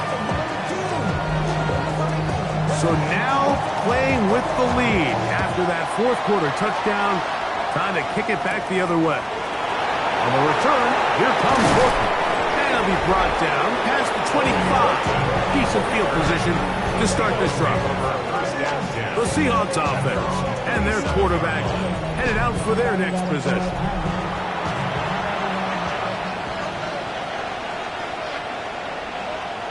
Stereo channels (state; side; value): identical; both; correlation 1.00